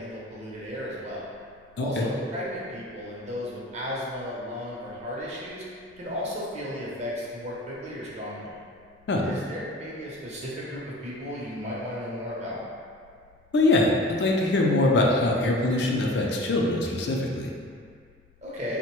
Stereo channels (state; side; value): noise; left; rumble, 30 dB below the sound